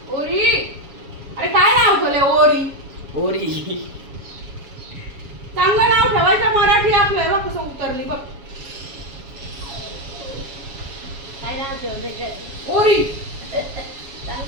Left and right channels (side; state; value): left; late; 7.2 ms